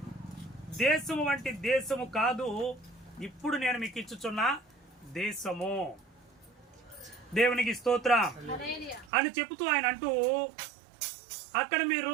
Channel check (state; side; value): drops out; left; at 9.1 s